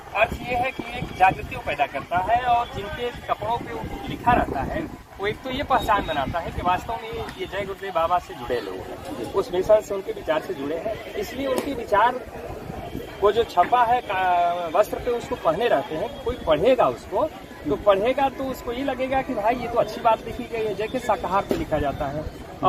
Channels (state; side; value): identical; both; correlation 1.00